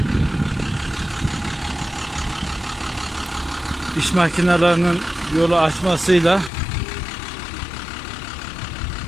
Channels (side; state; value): right; drops out; at 6.5 s